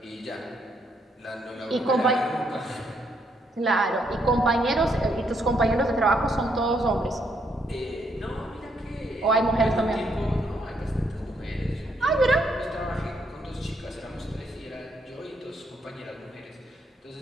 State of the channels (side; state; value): both; normal; correlation 0.74